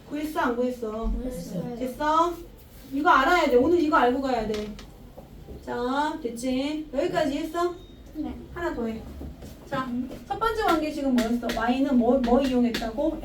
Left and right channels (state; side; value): identical; both; correlation 1.00